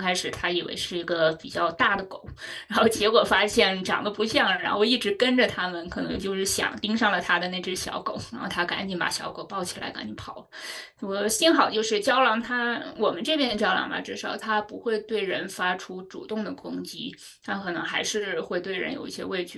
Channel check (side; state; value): both; identical; correlation 1.00